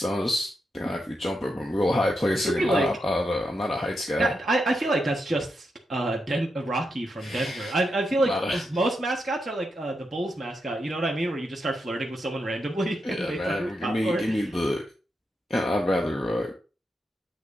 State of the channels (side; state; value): both; normal; correlation 0.85